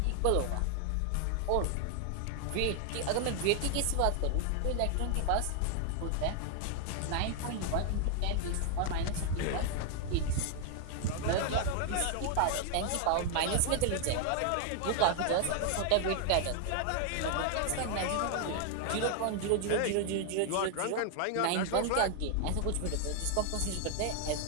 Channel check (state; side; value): different; both; correlation 0.00